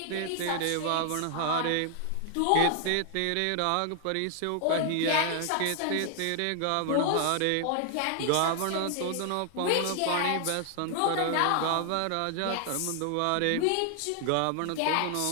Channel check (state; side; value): different; both; correlation 0.00